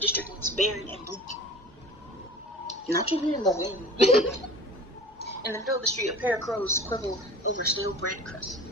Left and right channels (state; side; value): normal; both; correlation 0.41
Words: looks barren and bleak. Not even in the wind. In the middle of the street, a pair of crows quibble over stale bread crust.